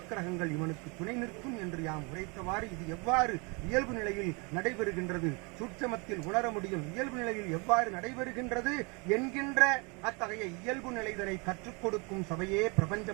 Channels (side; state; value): left; quieter; 30.9 dB